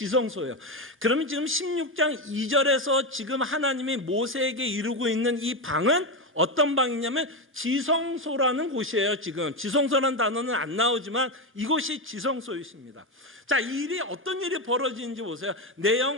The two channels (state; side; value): normal; both; correlation 0.12